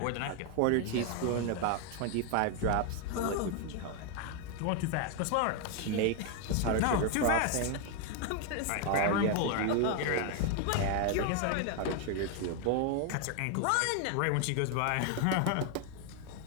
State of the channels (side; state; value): both; different; correlation 0.01